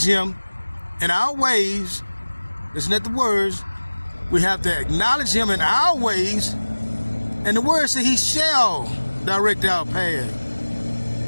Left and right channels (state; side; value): inverted; both; correlation -1.00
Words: him in our ways. Listen at the words. We have to acknowledge him in our ways. And the word says he shall direct our path.